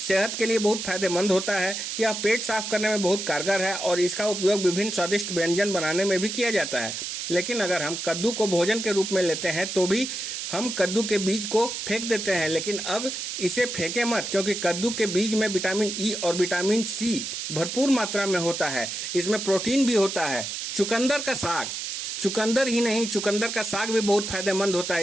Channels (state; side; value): noise; right; hiss, 5 dB below the sound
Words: सेहत के लिए बहुत फायदेमंद होता है। यह पेट साफ करने में बहुत कारगर है और इसका उपयोग विभिन्न स्वादिष्ट व्यंजन बनाने में भी किया जाता है। लेकिन अगर हम कद्दू को भोजन के रूप में लेते हैं तो भी हम कद्दू के बीज को फेंक देते हैं। लेकिन अब इसे फेंके मत, क्योंकि कद्दू के बीज में विटामिन ई और विटामिन सी भरपूर मात्रा में होता है। इसमें प्रोटीन भी होता है। चुकंदर का साग, चुकंदर ही नहीं, चुकंदर का साग भी बहुत फायदेमंद होता है।